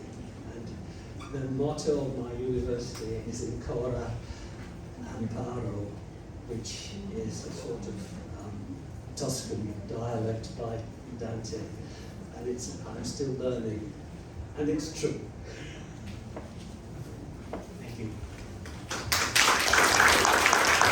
and the motto of my university is Ancora Amparo, which is a sort of Tuscan dialect by Dante, and I'm still learning, and it's true. Thank you.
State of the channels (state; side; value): identical; both; correlation 1.00